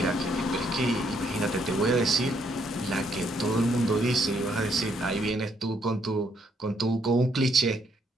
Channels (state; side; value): normal; both; correlation 0.72